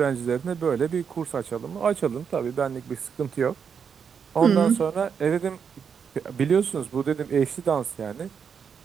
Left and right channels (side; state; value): left; quieter; 6.8 dB